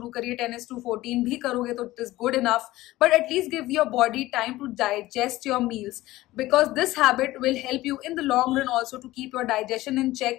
करिए, 10:14 भी करोगे तो it is good enough. But at least give your body time to digest your meals, because this habit will help you in the long run also to keep your digestion in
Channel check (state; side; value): quieter; right; 17.3 dB